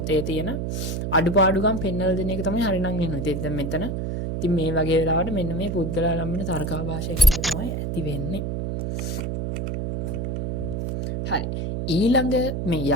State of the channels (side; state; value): right; noise; hum, 2 dB below the sound